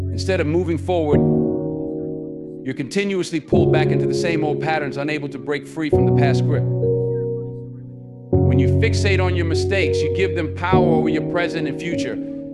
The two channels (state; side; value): identical; both; correlation 1.00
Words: Instead of moving forward, you're continuously pulled back into the same old patterns, unable to break free from the past grip. When you fixate on your mistakes, you give them power over your present and future.